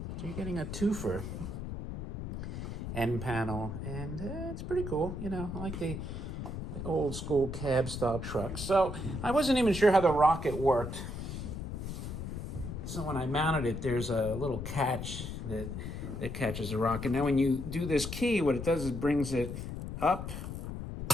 So you're getting a twofer. End panel, and it's pretty cool. I like the old school cab style truck. So I wasn't even sure how the rocket worked. So when I mounted it, there's a little catch that catches the rocket. Now when you do this key, what it does is brings it up.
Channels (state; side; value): noise; left; rumble, 6 dB below the sound